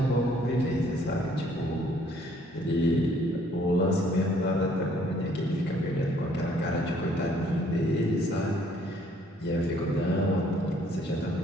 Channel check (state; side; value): normal; both; correlation 0.62